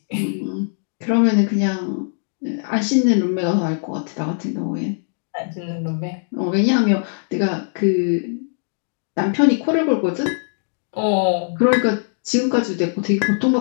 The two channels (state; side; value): silent; right; digital silence